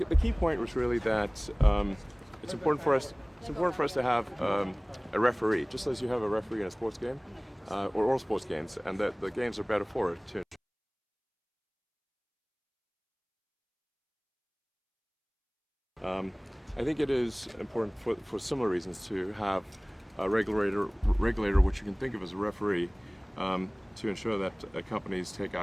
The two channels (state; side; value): identical; both; correlation 1.00